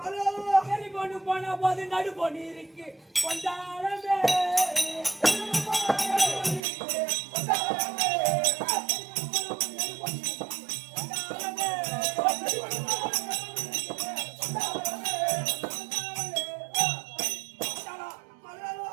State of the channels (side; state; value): left; drops out; at 6.6 s